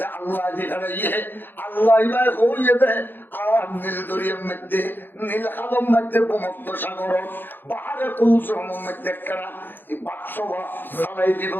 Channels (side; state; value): right; late; 0.095 ms